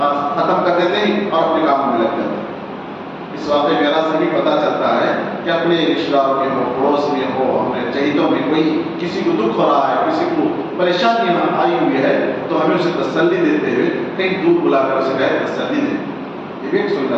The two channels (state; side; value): identical; both; correlation 1.00